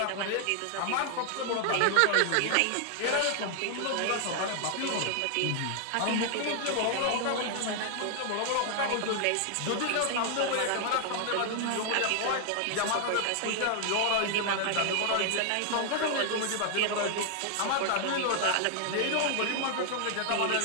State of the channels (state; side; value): different; both; correlation 0.00